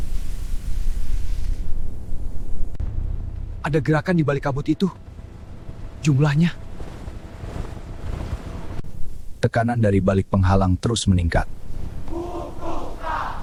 Ada gerakan di balik kabut itu. Jumlahnya. Tekanan dari balik penghalang terus meningkat.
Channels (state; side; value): identical; both; correlation 1.00